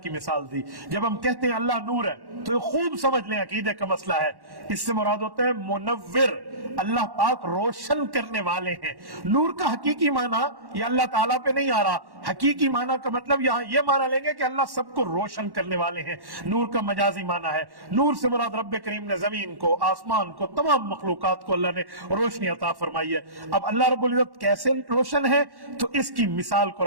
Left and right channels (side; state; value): left; late; 1.1 ms